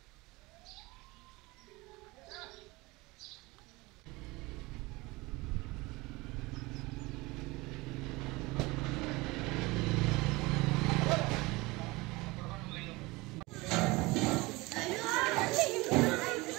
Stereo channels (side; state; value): left; quieter; 22.8 dB